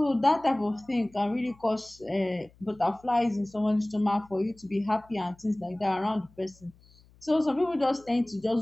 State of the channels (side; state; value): left; noise; hum, 28 dB below the sound